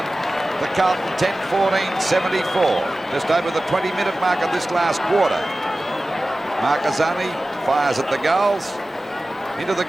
The Carlton 10, 14, 74. Just over the 20-minute mark of this last quarter. Marcazani fires at the goals. Into the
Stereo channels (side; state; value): both; normal; correlation 0.96